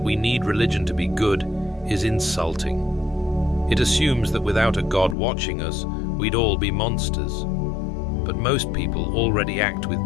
we need religion to be good is insulting. It assumes that without a God watching us, we'd all be monsters. But most people already act with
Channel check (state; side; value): drops out; right; at 5.2 s